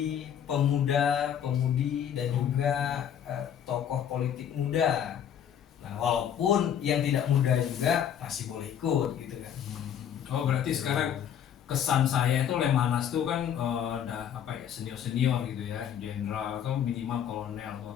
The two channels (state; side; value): quieter; right; 9.2 dB